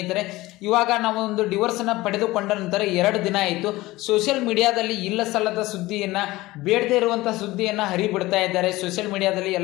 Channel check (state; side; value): quieter; right; 19.0 dB